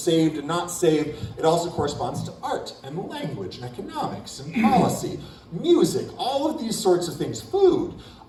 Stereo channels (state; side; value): identical; both; correlation 1.00